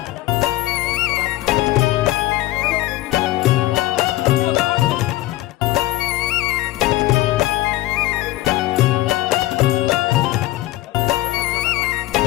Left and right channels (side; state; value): right; quieter; 16.6 dB